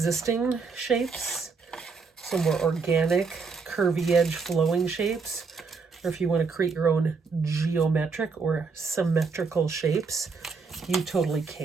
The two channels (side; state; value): left; quieter; 4.8 dB